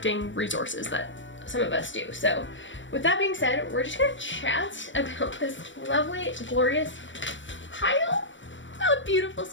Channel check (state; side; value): late; right; 0.55 ms